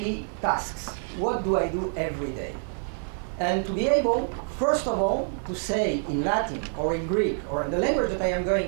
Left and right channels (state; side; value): silent; left; 60 dB below the other